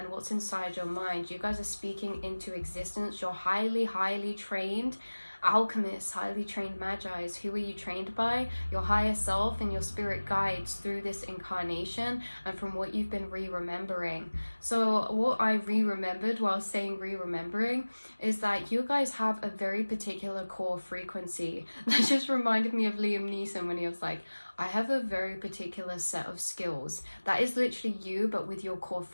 what's inside your mind. You guys are speaking into existence. You're highly trained alchemists, highly trained magi's. Who are you trained by? Your higher self and your spirit guides through this incarnation and from what you've been re-remembering. So what I re-remembered while saying re-remembering is that you guys have a very particular core frequency. That just reminded me of Liam Neeson when he was like, I have a very particular set of skills. That is literally you, but with your core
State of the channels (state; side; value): inverted; both; correlation -1.00